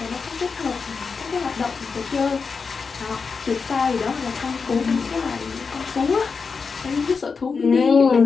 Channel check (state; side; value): quieter; right; 5.1 dB